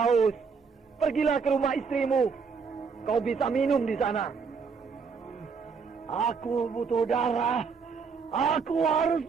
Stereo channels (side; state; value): left; quieter; 5.5 dB